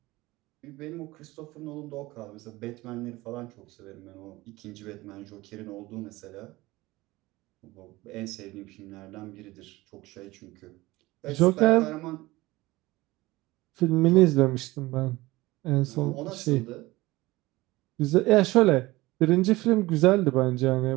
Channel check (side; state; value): left; quieter; 19.7 dB